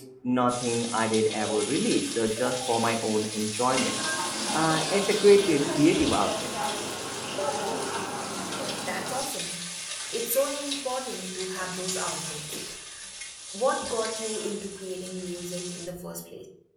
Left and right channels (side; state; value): both; identical; correlation 1.00